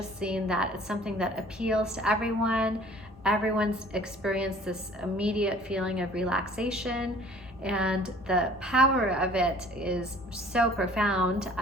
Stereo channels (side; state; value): both; normal; correlation 0.51